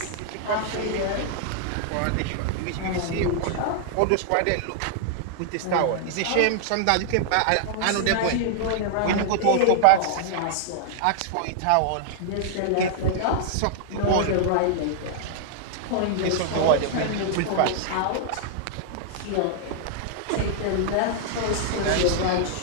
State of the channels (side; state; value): both; different; correlation -0.01